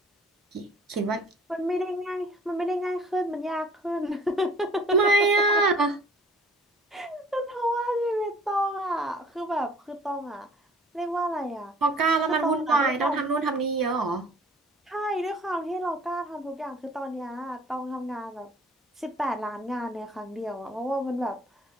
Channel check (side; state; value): both; normal; correlation 0.51